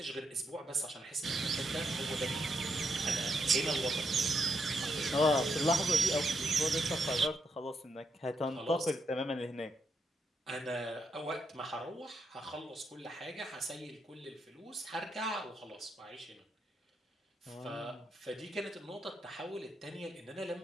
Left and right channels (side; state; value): both; normal; correlation 0.80